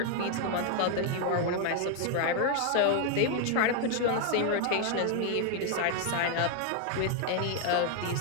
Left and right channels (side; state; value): both; different; correlation 0.00